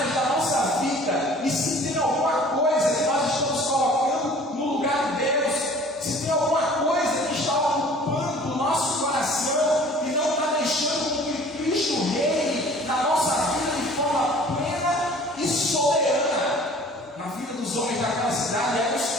da nossa vida, e se tem alguma coisa que nós estamos colocando no lugar de Deus, se tem alguma coisa que está ocupando o nosso coração e não está deixando que Cristo reine na nossa vida de forma plena e soberana, na vida dos homens daquela cidade, eram os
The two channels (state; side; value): normal; both; correlation 0.49